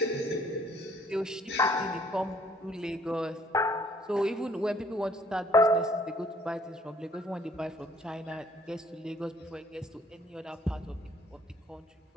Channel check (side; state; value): both; normal; correlation 0.61